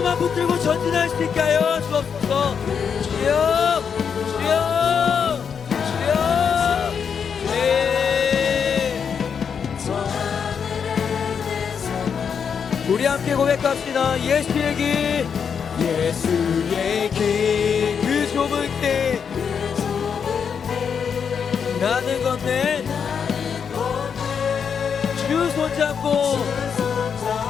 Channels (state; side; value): quieter; right; 6.8 dB